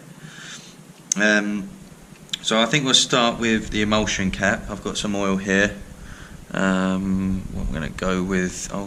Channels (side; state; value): both; identical; correlation 1.00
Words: So I think we'll start with the emulsion cap. I've got some oil here. What I'm going to go with,